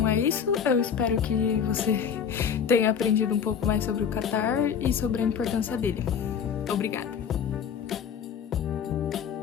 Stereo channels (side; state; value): right; quieter; 7.5 dB